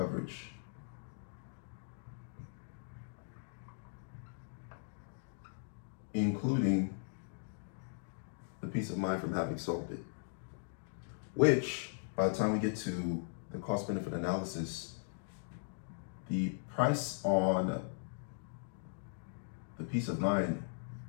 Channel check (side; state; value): right; silent; digital silence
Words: Including the peace of mind from having solved it. Which, by the time we get to the cost benefit analysis, the price on the peace of mind